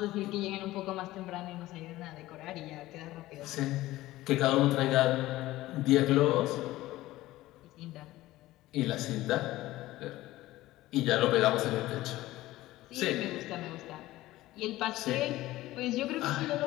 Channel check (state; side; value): quieter; right; 16.8 dB